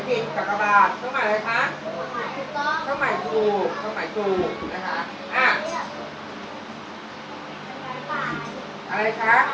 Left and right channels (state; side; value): identical; both; correlation 1.00